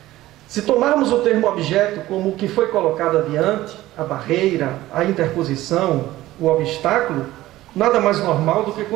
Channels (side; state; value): left; quieter; 16.1 dB